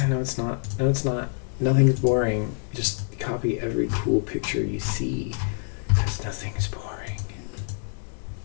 No, it's not. No, it's not. Nothing's boring. Just copy every cool picture you see, because nothing's boring.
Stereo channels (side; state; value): right; silent; 61 dB below the other